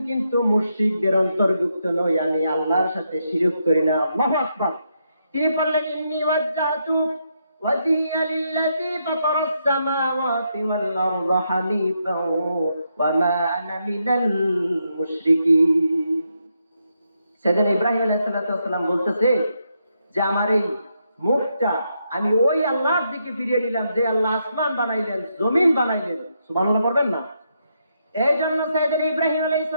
কিন্তু মুশরিকদের অন্তর্ভুক্ত নই, আমি আল্লাহর সাথে শিরক করি না। আল্লাহু আকবার। তিনি বললেন, ইন্নী ওয়াজ্জাহতু ওয়াজহিয়া লিল্লাযী ফাতারাস সামাওয়াতি ওয়াল আরদা হানিফাও ওয়া মা আনা মিনাল মুশরিকিন। সাইয়েদনা ইব্রাহিম আলাইহিস সালাম বলতেছে যে আমার এই মুখটা আমি ওই আল্লাহর দিকে ফিরিয়ে নিলাম যে আল্লাহ আসমান বানাইলেন, জমিন বানাইলেন। সুবহানাল্লাহ পড়বেন না? এই জন্য সাইয়েদনা ইব্রাহিম আলাইহিস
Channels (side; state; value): both; inverted; correlation -0.80